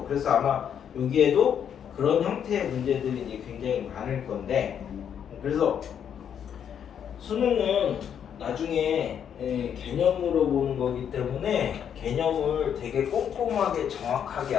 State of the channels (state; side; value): quieter; right; 8.5 dB